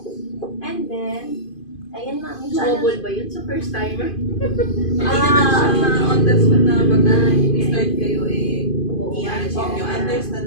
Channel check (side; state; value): right; late; 2.5 ms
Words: And then, ayan ma'am, yung channel. Mobile ba yun sa first timer? Hindi naman siya on the spot na pag na-start kayo, i-manage Oo. yung